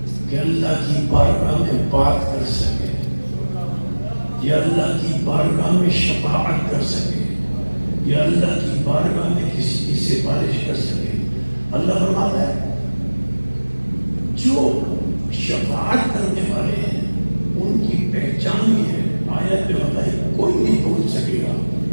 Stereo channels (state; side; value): inverted; both; correlation -1.00